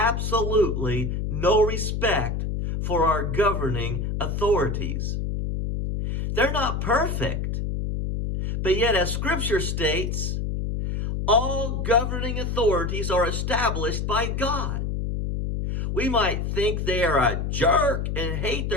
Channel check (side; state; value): left; noise; hum, 1 dB below the sound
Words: no respect for our governing authorities. They're not perfect, but yet as Scripture states, all governing authorities are established by God. We might think they are a jerk and hate